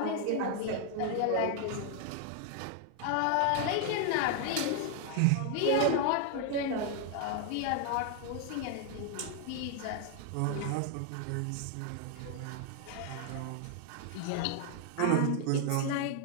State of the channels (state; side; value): different; both; correlation 0.00